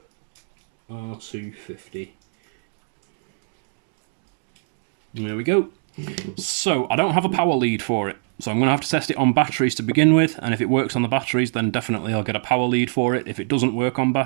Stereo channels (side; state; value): left; silent; digital silence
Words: R250. There we go. So I don't have a power lead for it. So I'm going to have to test it on batteries to begin with, and if it works on the batteries, then definitely I'll get a power lead for it. If it doesn't work on